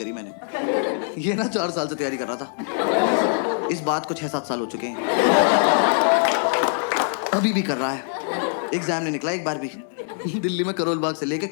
मैंने। ये ना 4 साल से तैयारी कर रहा था, इस बात को 6-7 साल हो चुके हैं, अभी भी कर रहा है। एग्जाम नहीं निकला एक बार भी। दिल्ली में करोल बाग से लेके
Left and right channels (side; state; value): right; silent; 61 dB below the other